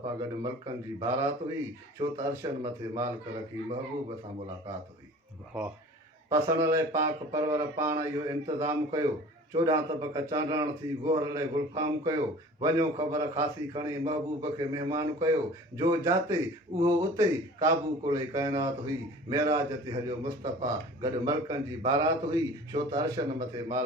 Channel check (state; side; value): normal; both; correlation 0.44